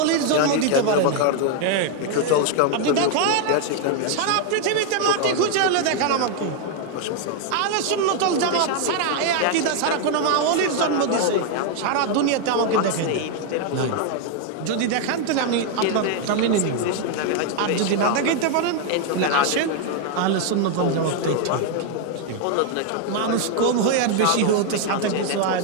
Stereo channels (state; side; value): different; both; correlation 0.01